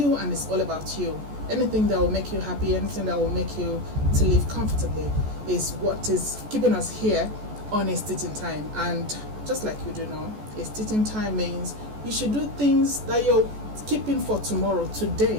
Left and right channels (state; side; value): late; left; 14 ms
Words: and it's all about you. Anything that will make you happy, anything that will make you to live comfortably is what is keeping us here on It's Teaching Time. And just like you do know, It's Teaching Time means you should do things that you're keeping for tomorrow,